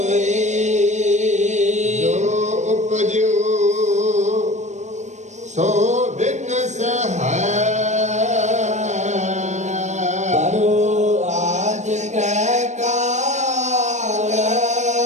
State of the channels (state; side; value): late; left; 0.34 ms